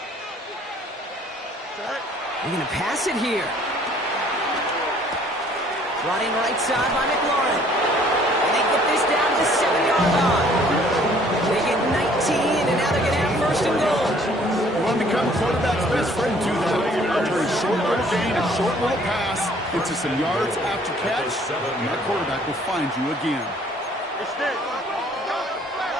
They're going to pass it here. Brought in right side by McLaurin. And they get this down to the 7-yard line. They get 19, and now they're going to have 1st and goal. You want to become a quarterback's best friend, do that. Turn short little gain, a short little pass into some yards after catch, and that quarterback will find you again. Extend.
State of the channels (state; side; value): normal; both; correlation 0.58